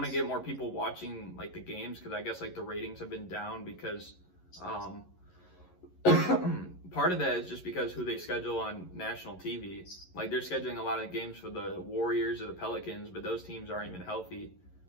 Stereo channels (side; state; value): right; late; 11 ms